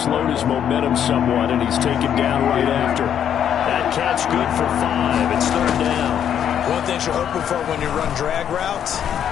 his momentum somewhat, and he's taken down right after. That catch good for 5. It's 3rd down. One thing you're hoping for when you run drag routes,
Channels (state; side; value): quieter; right; 9.2 dB